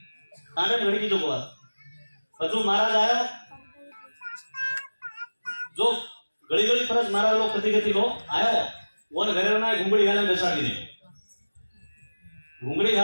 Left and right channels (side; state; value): both; inverted; correlation -1.00